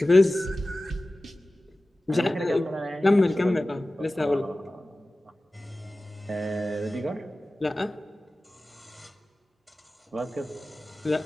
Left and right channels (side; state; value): both; normal; correlation 0.96